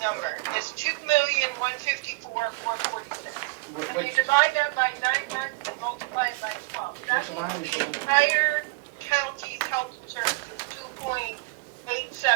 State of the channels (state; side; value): quieter; left; 25.3 dB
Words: number, it's $2,154,446. And you divide that by 9 months and multiply it by 12. That means the entire county's health insurance is